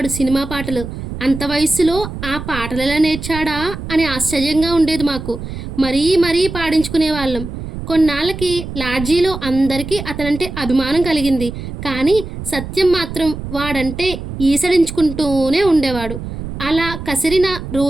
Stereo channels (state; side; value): noise; right; rumble, 9 dB below the sound